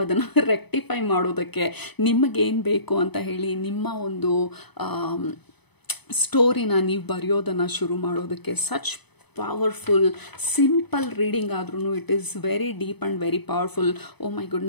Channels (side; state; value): right; late; 0.99 ms